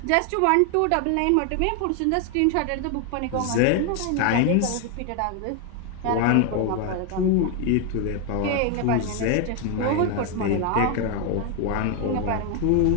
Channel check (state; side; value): different; both; correlation 0.01